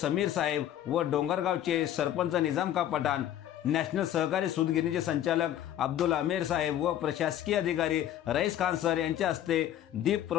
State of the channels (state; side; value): quieter; right; 11.5 dB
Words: साहेब व डोंगरगावचे सरपंच निजामका पठाण, नॅशनल सहकारी सूतगिरणीचे संचालक अब्दुल आमेर साहेब व प्रशासकीय अधिकारी रईस खान सर यांच्या हस्ते दीप